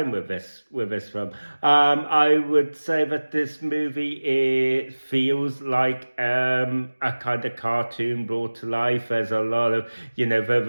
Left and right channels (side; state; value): both; inverted; correlation -1.00